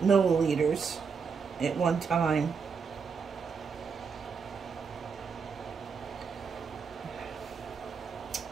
milliliters at one time.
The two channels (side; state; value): left; quieter; 5.8 dB